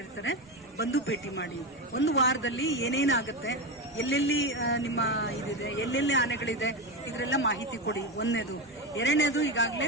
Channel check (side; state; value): both; normal; correlation 0.16